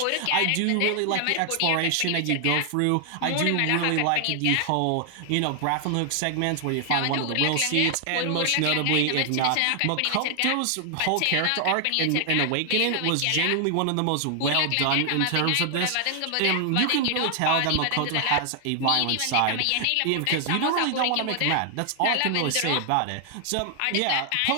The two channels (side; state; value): both; different; correlation 0.00